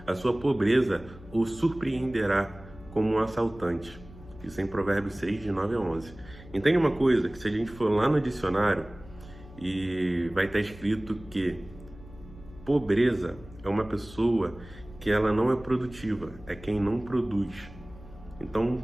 a sua pobreza o surpreenderá como um assaltante. Isso é em Provérbios 6, de 9 a 11. Entende uma coisa, que se a gente for lá no dicionário, e vai estar escrito que pobreza é uma pessoa que ela não é produtiva, é quem não produz. Então,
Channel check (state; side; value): noise; left; hum, 19 dB below the sound